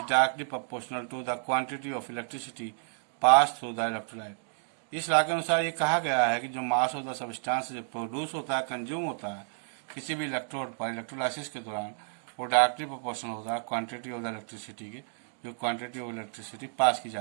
directly proportional to the quantity of electricity passed through the electrolyte. इस लॉ के अनुसार ये कहा गया है कि जो मास ऑफ द सब्सटेंस जो प्रोड्यूस होता है, कंज्यूम होता है किसी भी इलेक्ट्रोड पर इलेक्ट्रोलाइसिस के दौरान, वो डायरेक्टली प्रोपोर्शनल होता है क्वांटिटी ऑफ द इलेक्ट्रिसिटी के, जो क्वांटिटी ऑफ इलेक्ट्रिसिटी पास की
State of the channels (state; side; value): silent; left; digital silence